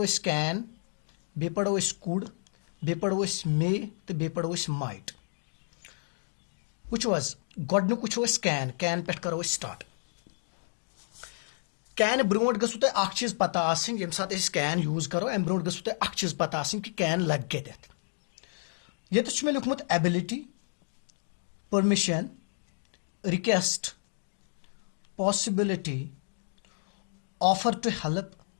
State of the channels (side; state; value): right; silent; digital silence